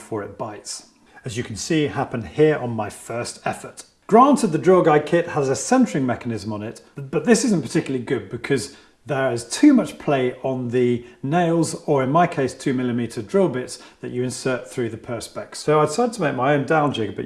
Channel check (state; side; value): identical; both; correlation 1.00